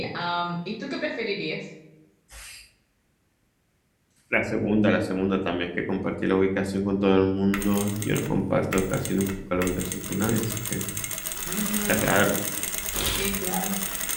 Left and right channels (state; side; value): identical; both; correlation 1.00